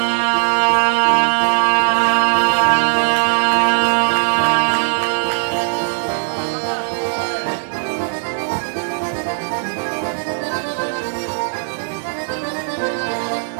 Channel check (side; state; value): left; silent; digital silence